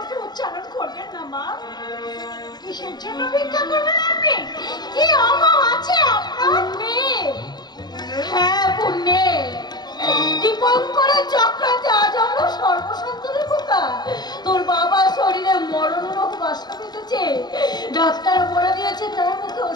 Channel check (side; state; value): right; late; 0.20 ms